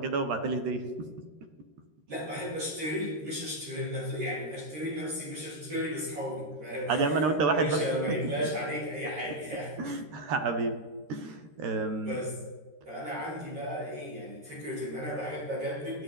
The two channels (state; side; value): late; left; 13 ms